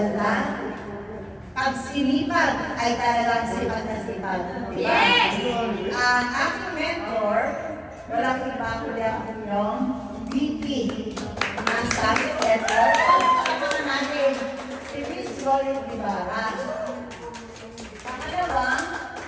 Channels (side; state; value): both; identical; correlation 1.00